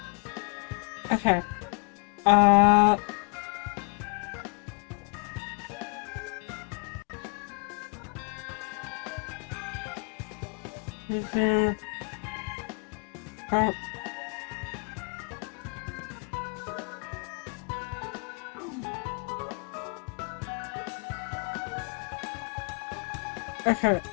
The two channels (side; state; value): right; quieter; 37.1 dB